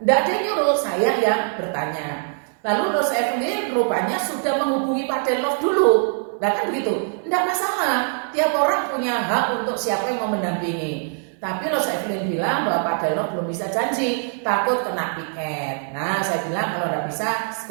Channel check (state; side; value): silent; left; 59 dB below the other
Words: ada yang nyuruh, saya yang bertanya. Lalu Rosa Evelyn rupanya sudah menghubungi Pak Denlov dulu. Nah kan begitu, tidak masalah, tiap orang punya hak untuk siapa yang mau mendampingi. Tapi Rosa Evelyn bilang bahwa Pak Denlov belum bisa janji, takut kena piket. Nah saya bilang kalau tidak bisa